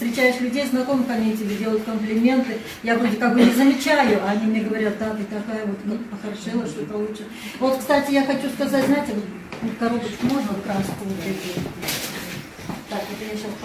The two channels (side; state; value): both; identical; correlation 1.00